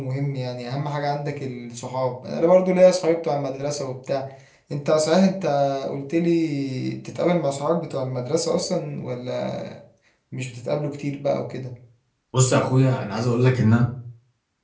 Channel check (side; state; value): both; identical; correlation 1.00